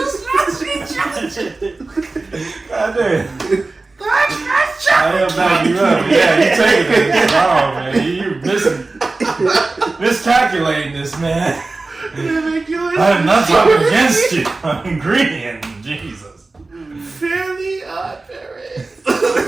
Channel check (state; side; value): quieter; left; 3.4 dB